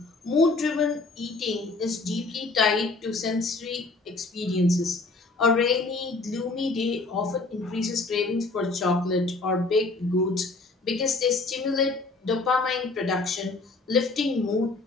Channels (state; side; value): quieter; right; 3.5 dB